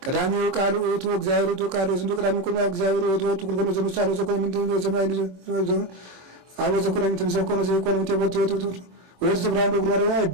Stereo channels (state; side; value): late; left; 26 ms